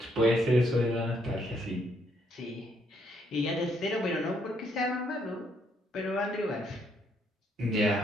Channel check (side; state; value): both; normal; correlation 0.72